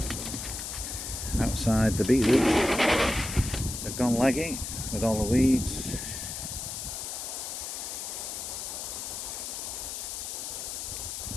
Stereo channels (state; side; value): noise; left; hiss, 6 dB below the sound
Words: Outside the beetroot, they've gone leggy. with all the weeds.